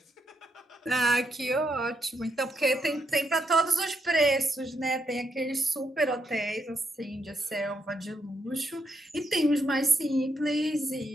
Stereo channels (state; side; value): normal; both; correlation 0.79